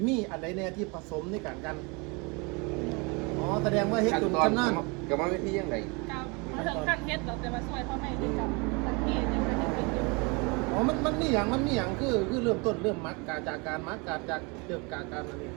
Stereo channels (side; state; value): left; quieter; 29.5 dB